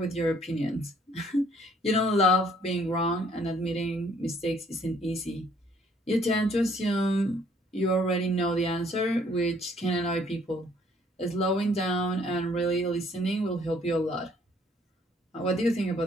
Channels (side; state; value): both; normal; correlation 0.62